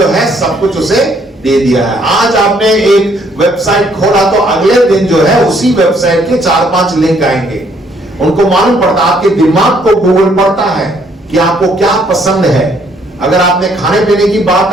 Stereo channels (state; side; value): normal; both; correlation 0.66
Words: है सब कुछ उसे दे दिया है। आज आपने एक वेबसाइट खोला तो अगले दिन जो है उसी वेबसाइट के 4-5 लिंक आएंगे। उनको मालूम पड़ता, आपके दिमाग को गूगल पड़ता है कि आपको क्या पसंद है। अगर आपने खाने पीने की बात